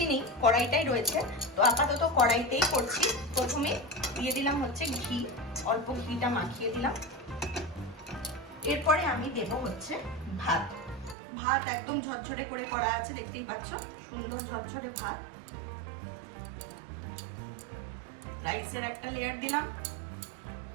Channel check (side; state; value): left; drops out; at 11.2 s